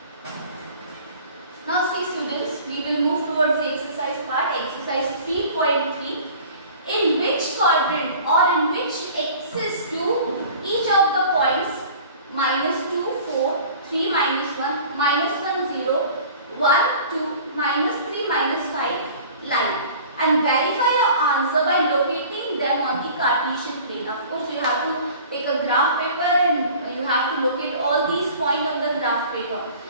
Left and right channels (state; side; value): inverted; both; correlation -0.45